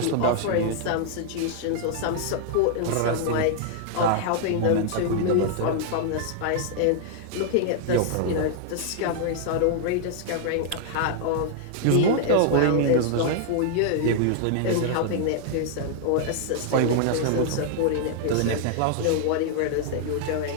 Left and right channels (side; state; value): both; different; correlation -0.01